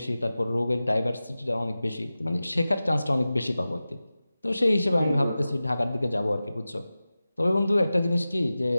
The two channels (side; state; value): both; inverted; correlation -0.95